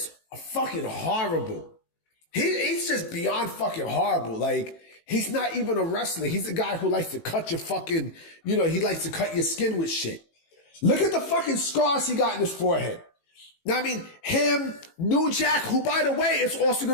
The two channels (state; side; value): late; right; 18 ms